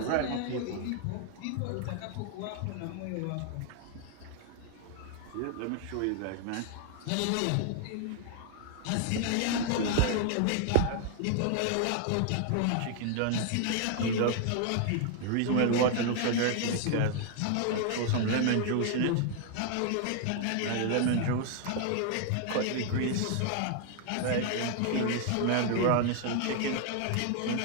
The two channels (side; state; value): both; different; correlation 0.00